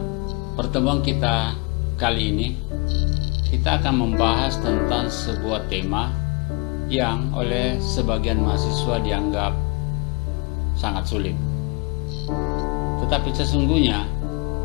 pertemuan kita kali ini, kita akan membahas tentang sebuah tema yang oleh sebagian mahasiswa dianggap sangat sulit. Tetapi sesungguhnya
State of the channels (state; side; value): quieter; right; 28.7 dB